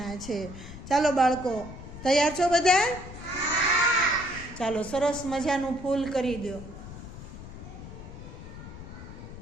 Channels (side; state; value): left; noise; rumble, 12 dB below the sound